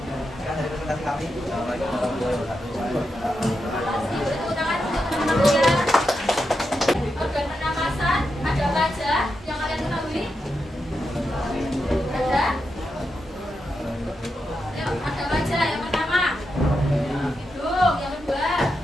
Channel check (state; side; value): normal; both; correlation 0.86